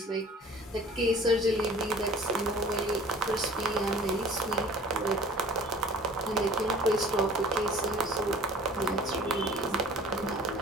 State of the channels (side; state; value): both; normal; correlation 0.47